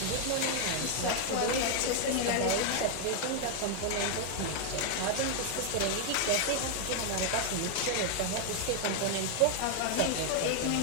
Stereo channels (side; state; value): both; different; correlation 0.00